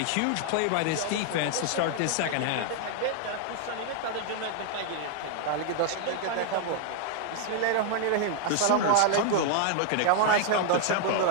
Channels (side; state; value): both; different; correlation 0.00